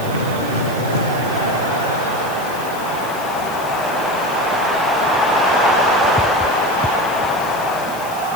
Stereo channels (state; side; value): noise; left; hiss, 16 dB below the sound